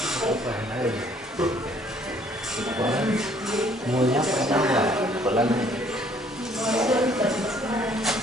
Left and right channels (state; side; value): normal; both; correlation 0.61